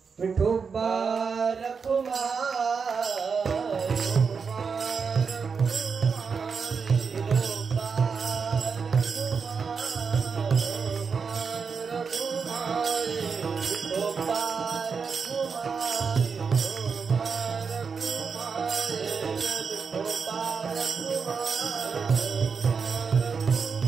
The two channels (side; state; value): left; quieter; 5.6 dB